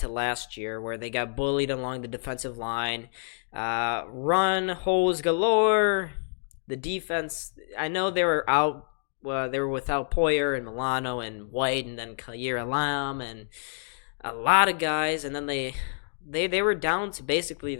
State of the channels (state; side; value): silent; right; digital silence